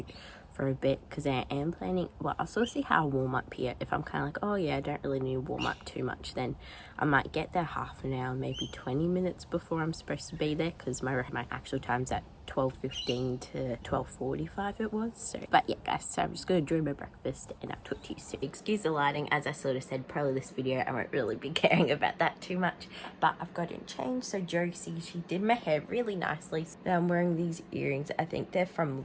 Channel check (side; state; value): both; identical; correlation 1.00